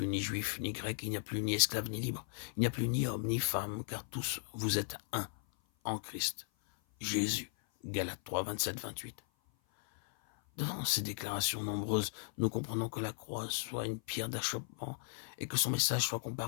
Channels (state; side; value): silent; right; 53 dB below the other